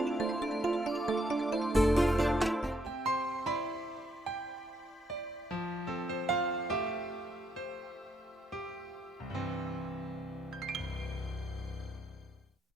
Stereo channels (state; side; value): normal; both; correlation 0.74